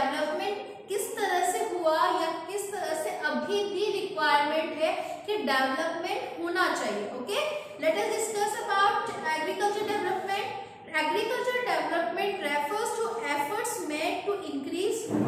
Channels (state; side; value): identical; both; correlation 1.00